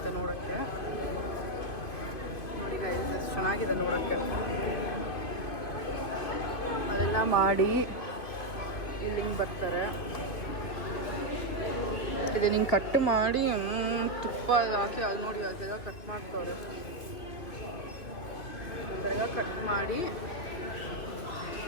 ನೋಡೋಕ್ಕೆ. ನೋಡಿ ಗೈಸ್ ಎಷ್ಟು ಚೆನ್ನಾಗಿದೆ ನೋಡೋಕ್ಕೆ. ಅದೆಲ್ಲ ಮಾಡಿ ಇಲ್ಲಿ ಹಿಂಗೆ ಬರ್ತಾರೆ. ಇದು ಹಿಂಗೆ ಕಟ್ ಮಾಡಿ ತುಪ್ಪ ಹಾಕಿ ಅದು ನೋಡಿ ಅದೆಲ್ಲ ಕಟ್ ಮಾಡ್ತವ್ರೆ. ಅದೆಲ್ಲ ಕಟ್ ಮಾಡಿ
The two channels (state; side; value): late; right; 2.5 ms